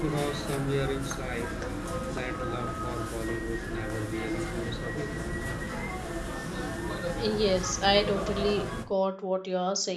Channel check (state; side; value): identical; both; correlation 1.00